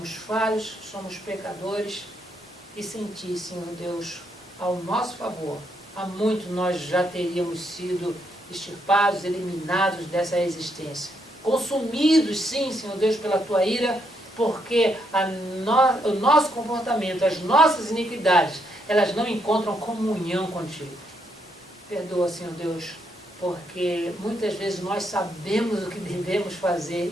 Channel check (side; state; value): both; normal; correlation 0.77